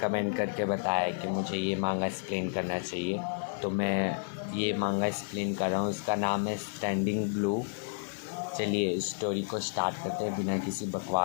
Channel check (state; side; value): silent; right; 57 dB below the other